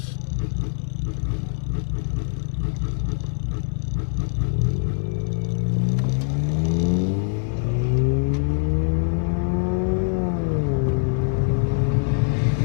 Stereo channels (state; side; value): silent; right; digital silence